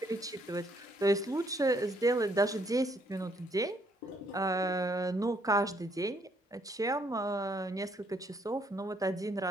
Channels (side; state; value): both; normal; correlation 0.69